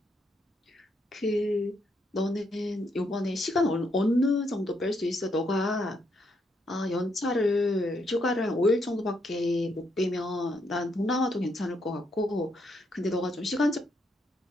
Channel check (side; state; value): both; normal; correlation 0.76